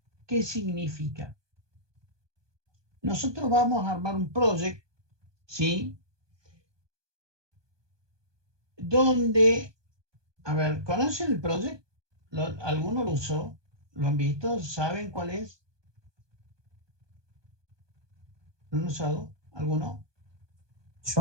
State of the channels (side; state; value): left; late; 1.2 ms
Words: ¿Qué significa? Nosotros vamos a armar un project, ¿sí? Donde, a ver, ¿conocen el project? ¿Alguno lo usó? ¿Lo han visto? ¿Saben cuál es? ¿Lo han usado? ¿Alguno?